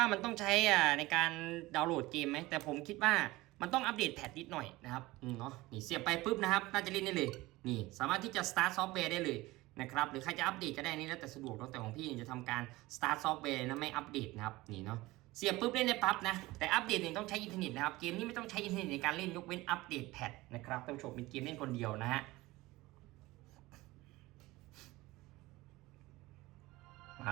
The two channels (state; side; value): quieter; left; 19.7 dB